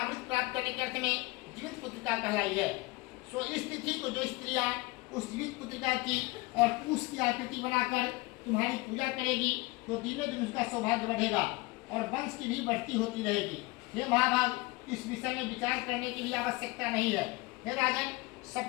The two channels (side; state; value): right; quieter; 23.2 dB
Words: करने के अर्थ में जीवित पुत्रिका कहलाई है। सो इस तिथि को जो स्त्रियां उस जीवित पुत्रिका की और उसकी आकृति बनाकर तुम्हारी पूजा करेगी, तो दिनों दिन उसका सौभाग्य बढ़ेगा और वंश की भी बढ़ती होती रहेगी। हे महाभाग, इस विषय में विचार करने की भी आवश्यकता नहीं है। हे राजन,